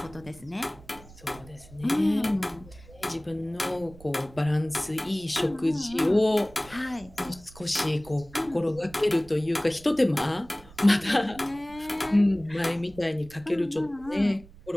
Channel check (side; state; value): right; noise; rumble, 22 dB below the sound